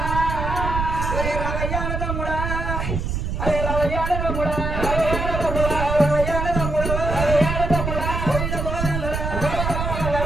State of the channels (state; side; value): noise; right; rumble, 2 dB below the sound